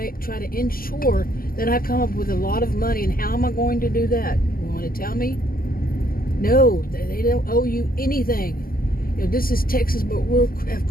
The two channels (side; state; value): right; late; 0.42 ms